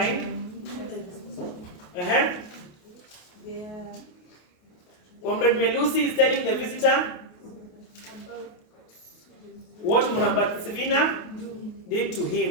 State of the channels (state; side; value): late; right; 28 ms